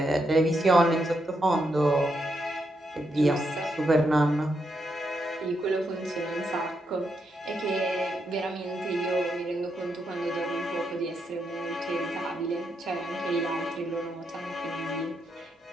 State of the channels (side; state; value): both; normal; correlation 0.81